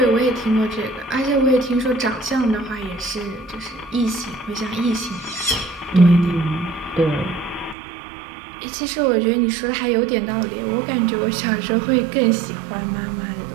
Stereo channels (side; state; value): left; drops out; at 7.8 s